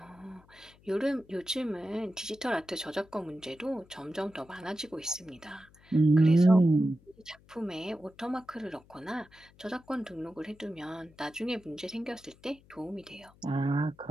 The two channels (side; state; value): left; noise; hum, 27 dB below the sound